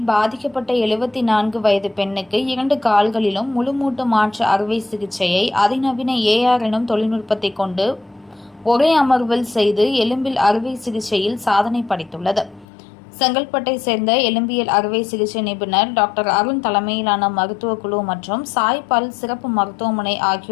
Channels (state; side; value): drops out; right; at 12.7 s